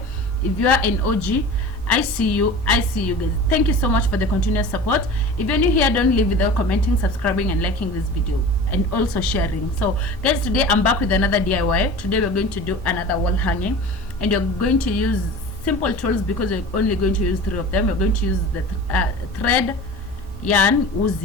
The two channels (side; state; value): both; normal; correlation 0.36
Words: If you are an OG, I see you guys. Thank you so much for the continuous support. If you're new here, don't leave without commenting, subscribing and liking this video, and also sharing. So guys, today I'm back with another DIY. Today we're going to do another wall hanging, and you're going to use simple tools because we're only going to use 3 of them. We're going to use the thread, yarn,